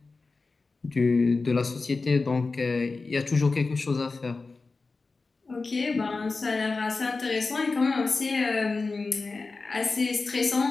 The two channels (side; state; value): right; quieter; 3.9 dB